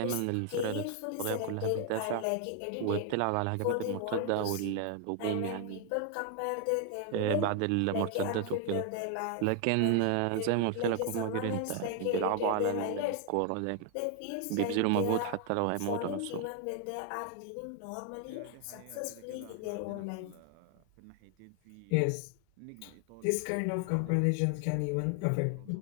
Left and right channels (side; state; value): both; different; correlation 0.00